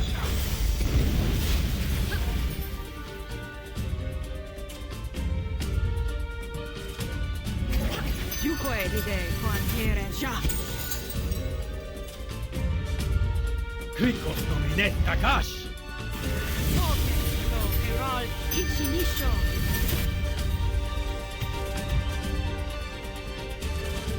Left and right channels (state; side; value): identical; both; correlation 1.00